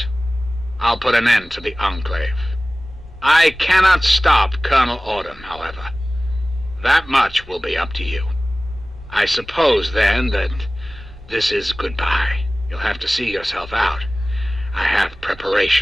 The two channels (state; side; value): normal; both; correlation 0.98